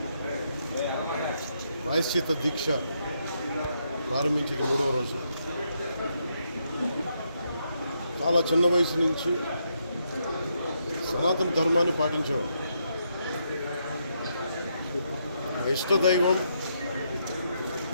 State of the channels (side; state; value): both; inverted; correlation -0.78